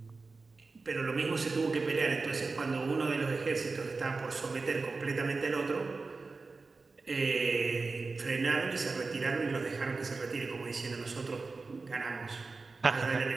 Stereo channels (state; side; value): quieter; left; 4.0 dB